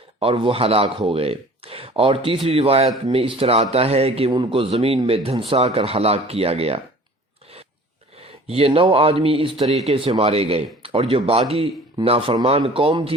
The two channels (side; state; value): both; normal; correlation 0.47